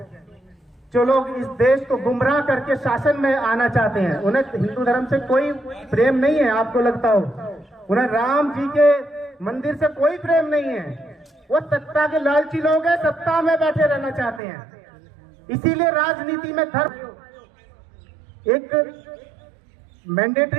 जो लोग इस देश को गुमराह करके शासन में आना चाहते हैं, उन्हें हिंदू धर्म से कोई प्रेम नहीं है। आपको लगता हो उन्हें राम जी के मंदिर से कोई प्रेम नहीं है। वो सत्ता के लालची लोग हैं, सत्ता में बैठे रहना चाहते हैं। इसीलिए राजनीति में धर्म एक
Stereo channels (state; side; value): drops out; left; at 14.4 s